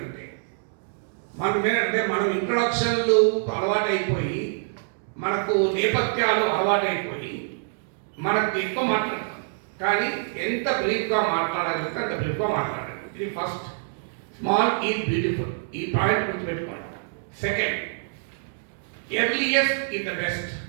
అంటే. 1 మినిట్ అంటే మనం ఇంట్రొడక్షన్లు అలవాటైపోయి, మనకు నేపథ్యాలు అలవాటైపోయి మనకు ఎక్కువ మాట్లాడతాం. కానీ ఎంత బ్రీఫ్గా మాట్లాడగలిగితే అంత బ్రీఫ్గా మాట్లాడాలి. ఇది ఫస్ట్, స్మాల్ ఈజ్ బ్యూటిఫుల్. ఈ పాయింట్ గుర్తుపెట్టుకోండి. Second, earliest in the best.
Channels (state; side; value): silent; left; digital silence